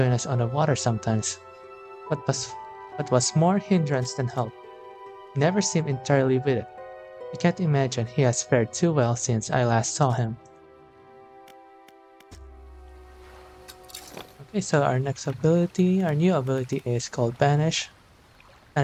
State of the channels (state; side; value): identical; both; correlation 1.00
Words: us on the water sometimes. But was more hindrance than help. He never seemed entirely with it. I can't imagine he has fared too well since I last saw him. Okay, so our new ability is called Banish.